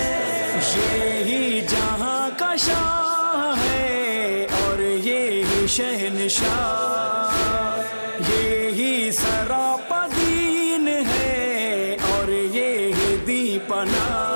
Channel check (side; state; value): both; inverted; correlation -1.00